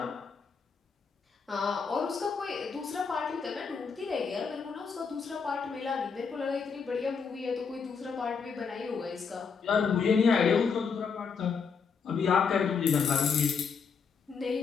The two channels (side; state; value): right; quieter; 5.8 dB